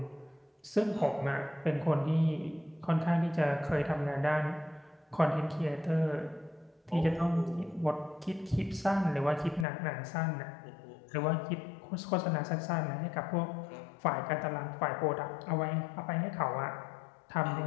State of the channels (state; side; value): drops out; right; at 9.7 s